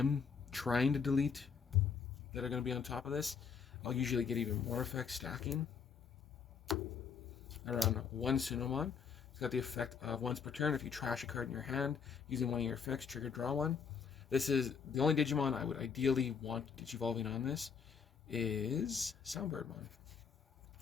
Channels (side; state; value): right; quieter; 6.4 dB